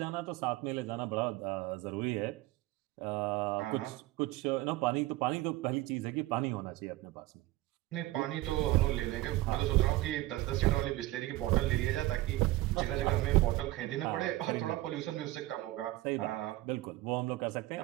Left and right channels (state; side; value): quieter; left; 17.9 dB